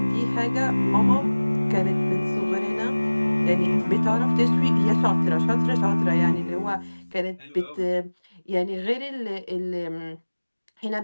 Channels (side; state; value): both; inverted; correlation -1.00